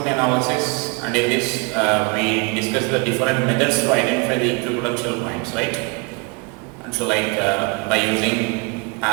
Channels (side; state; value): left; quieter; 30.4 dB